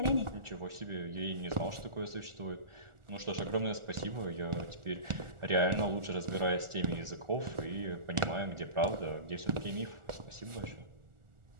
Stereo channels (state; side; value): late; left; 1.4 ms